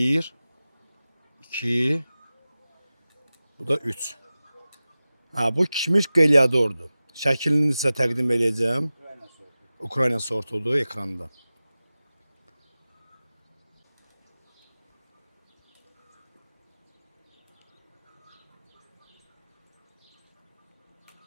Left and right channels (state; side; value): inverted; both; correlation -0.96